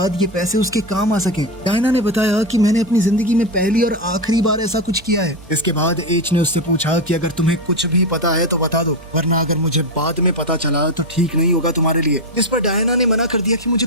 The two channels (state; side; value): noise; right; hum, 20 dB below the sound